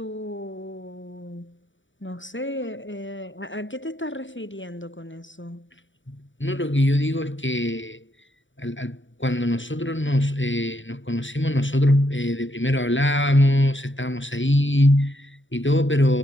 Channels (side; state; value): right; late; 0.55 ms